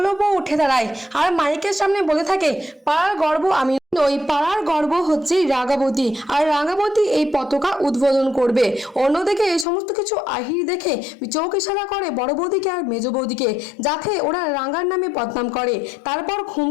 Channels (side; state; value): right; drops out; at 9.7 s